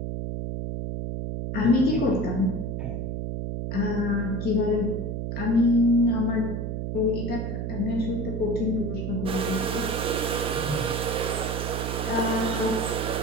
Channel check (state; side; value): noise; right; hum, 3 dB below the sound